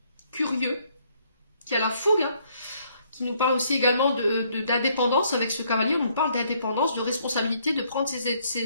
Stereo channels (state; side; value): inverted; both; correlation -0.67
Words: curieux, qui a la fougue, hein, qui nous parle aussi également d'indépendance avec ce cavalier. On nous parle d'indépendance, de responsabilité, de prendre